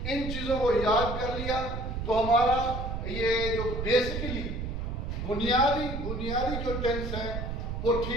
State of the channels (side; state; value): right; noise; rumble, 4 dB below the sound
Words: इन चीजों को याद कर लिया तो हमारा ये जो बेसिकली बुनियादी जो टेंस है वो